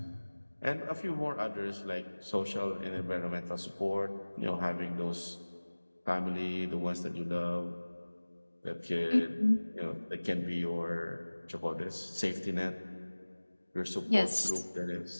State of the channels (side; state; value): both; inverted; correlation -1.00